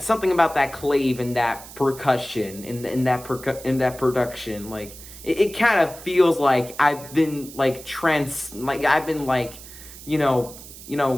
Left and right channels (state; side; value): noise; right; hiss, 16 dB below the sound